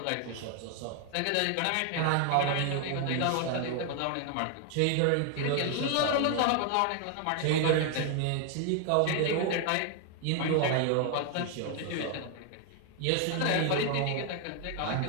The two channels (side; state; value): both; different; correlation 0.00